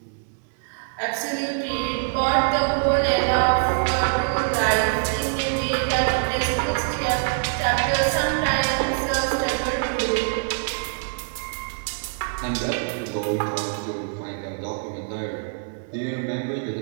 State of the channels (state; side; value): silent; left; 62 dB below the other